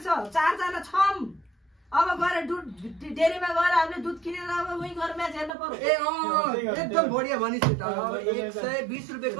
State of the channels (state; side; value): drops out; left; at 5.5 s